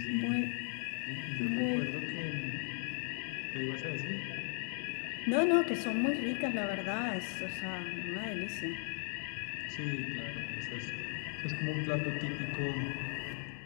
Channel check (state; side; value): silent; right; 53 dB below the other